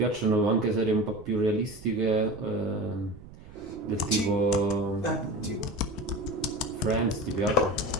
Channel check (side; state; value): right; noise; rumble, 18 dB below the sound